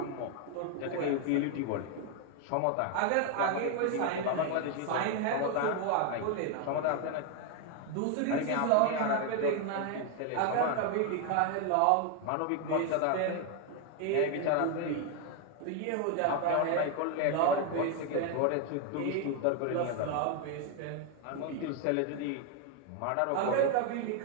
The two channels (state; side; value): different; both; correlation 0.01